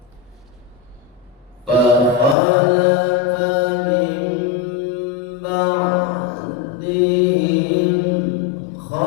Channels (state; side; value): drops out; right; at 2.4 s